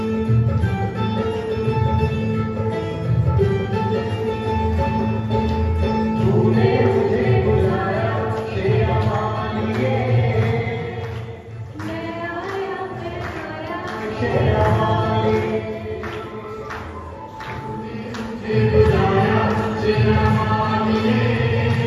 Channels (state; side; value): identical; both; correlation 1.00